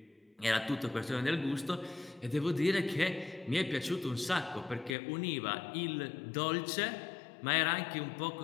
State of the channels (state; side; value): drops out; right; at 5.0 s